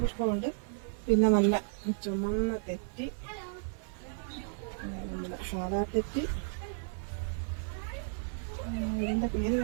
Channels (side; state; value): left; silent; 56 dB below the other